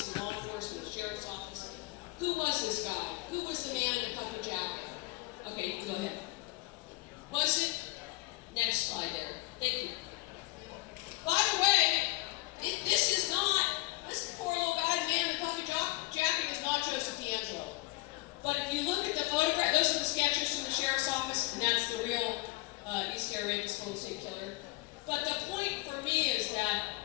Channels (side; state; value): right; quieter; 21.7 dB